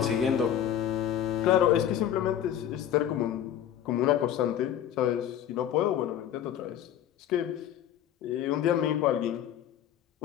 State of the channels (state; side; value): quieter; right; 10.4 dB